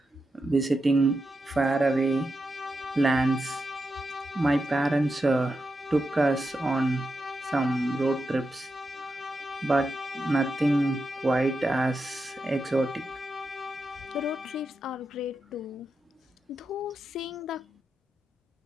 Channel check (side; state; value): both; normal; correlation 0.88